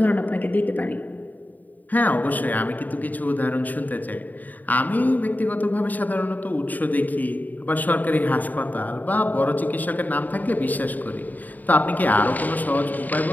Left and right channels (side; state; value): right; late; 0.083 ms